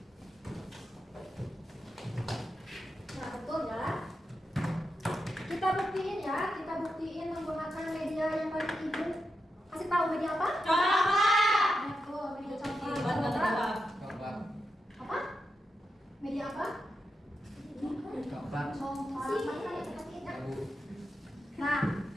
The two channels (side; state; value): both; normal; correlation 0.87